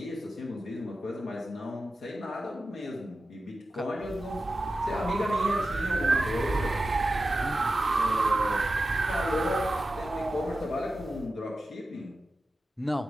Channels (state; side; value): normal; both; correlation 0.92